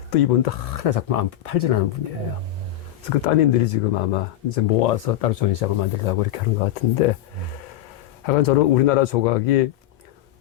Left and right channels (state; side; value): quieter; right; 12.5 dB